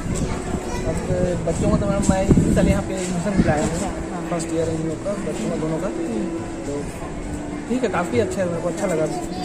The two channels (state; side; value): identical; both; correlation 1.00